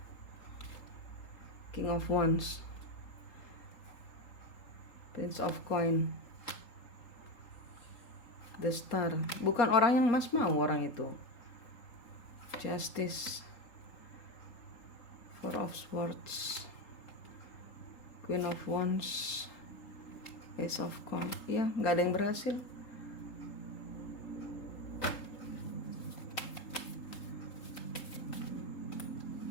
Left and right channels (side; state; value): right; late; 3.8 ms